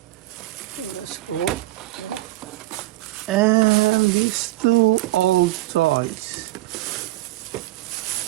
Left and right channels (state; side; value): quieter; left; 17.6 dB